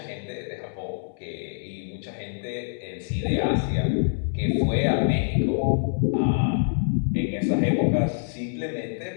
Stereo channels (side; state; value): right; silent; 60 dB below the other